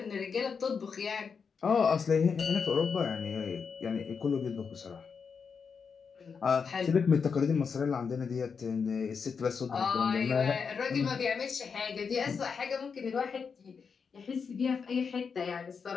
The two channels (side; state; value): right; quieter; 5.9 dB